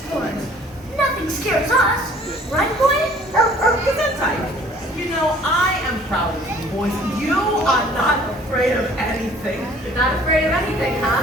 Nothing scares us. Right, boy? Gesundheit. You know, I am proud of you, boys. You are not afraid of anything. Not afraid of anything,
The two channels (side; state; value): both; normal; correlation 0.54